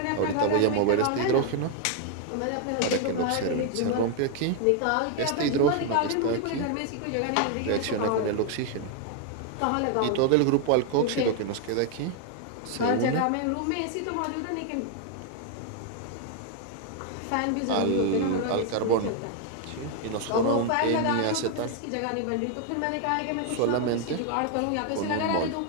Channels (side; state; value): both; different; correlation 0.00